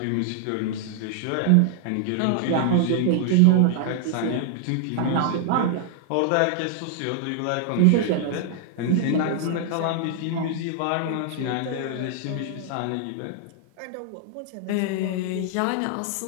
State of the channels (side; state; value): both; different; correlation 0.00